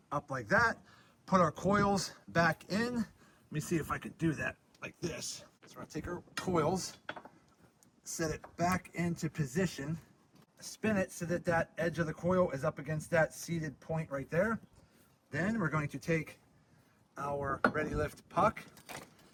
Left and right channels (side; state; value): both; identical; correlation 1.00